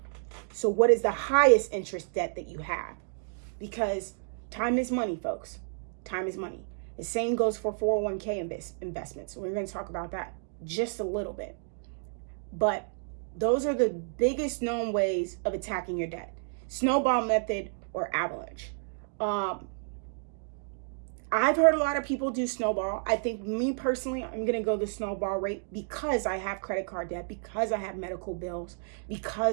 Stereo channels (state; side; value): silent; left; digital silence